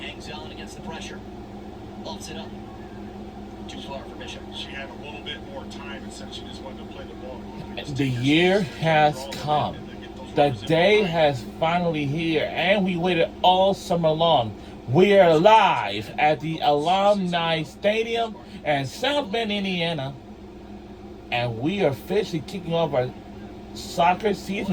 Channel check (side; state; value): both; identical; correlation 1.00